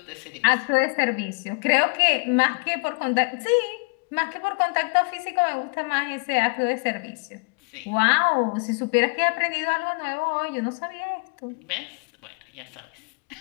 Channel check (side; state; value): right; quieter; 34.7 dB